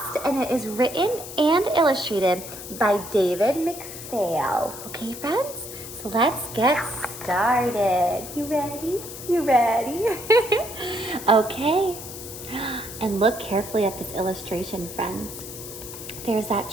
and it is written and illustrated by David McPhail. Okay, friends? So let's get started. You ready? You ready? Okay. And look carefully at this illustration, friends. There's that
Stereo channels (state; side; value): noise; left; hiss, 11 dB below the sound